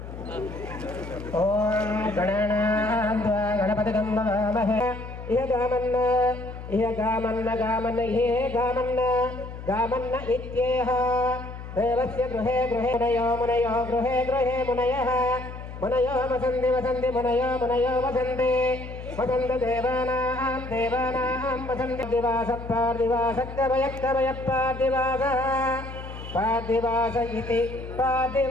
ఓం గణానాద్వా గణపతిగం నమామహే ఇహ గామన్న ఇత్యేహ దేవస్య గృహే మునయో గృహే మునయః మునయో వసంతి మునయో వసంతి దేవానాం వసంతి పార్థివాస ఇతి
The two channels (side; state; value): left; noise; hum, 11 dB below the sound